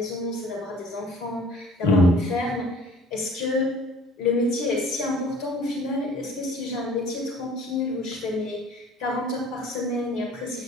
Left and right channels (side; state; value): both; normal; correlation 0.50